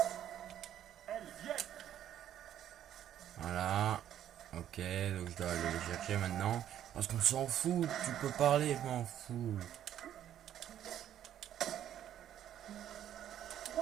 Elles viennent. Voilà. Ok, donc je dois aller les chercher maintenant. Parce qu'on s'en fout, tu peux parler, je m'en fous.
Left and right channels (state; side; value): quieter; left; 10.9 dB